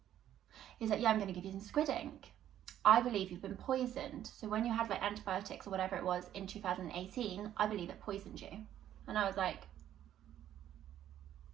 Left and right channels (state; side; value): quieter; left; 11.4 dB